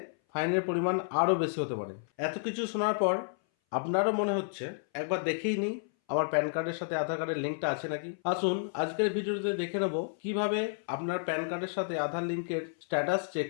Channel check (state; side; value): silent; right; 57 dB below the other